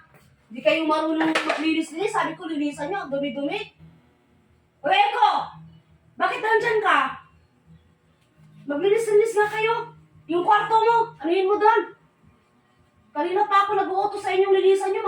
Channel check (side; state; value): both; identical; correlation 1.00